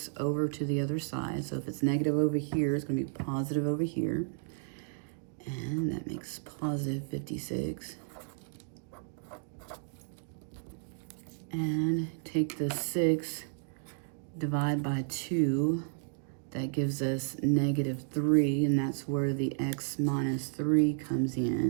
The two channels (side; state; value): left; silent; digital silence